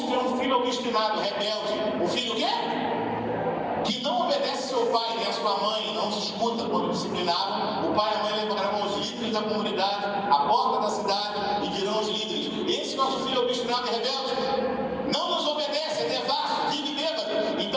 um filho obstinado, rebelde, um filho o quê? Que não obedece seu pai nem a sua mãe, não se escuta quando disciplinado, o pai e a mãe levarão os líderes da comunidade à porta da cidade e dirão aos líderes: esse nosso filho obstinado e rebelde não nos obedece, é devasso, vive bêbado.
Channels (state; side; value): identical; both; correlation 1.00